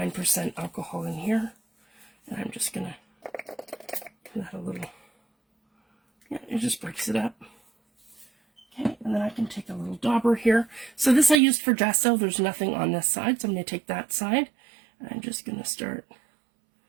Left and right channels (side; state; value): left; drops out; at 11.4 s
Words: alcohol in here. And I'm just going to give that a little, yeah, it just breaks it up. Okay, and then I can take a little dauber here. So this I used for gesso. There's nothing on this side, so I'm going to take that side. And I'm just going to start.